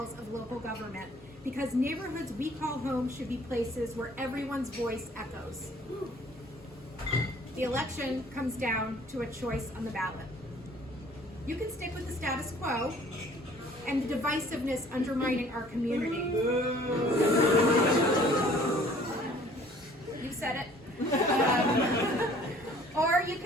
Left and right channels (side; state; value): both; normal; correlation 0.54